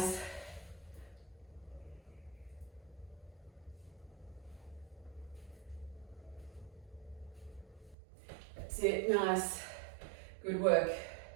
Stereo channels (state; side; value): drops out; left; at 8.0 s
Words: That's it. Nice. Good work.